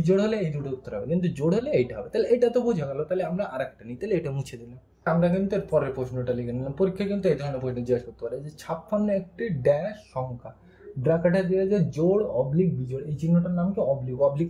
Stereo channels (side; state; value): both; identical; correlation 1.00